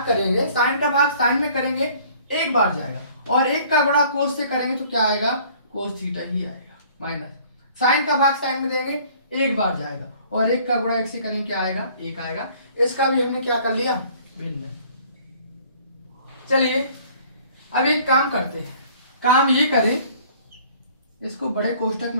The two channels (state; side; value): inverted; both; correlation -0.54